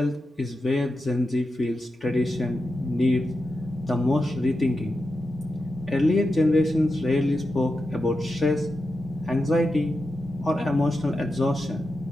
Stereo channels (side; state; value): both; normal; correlation 0.89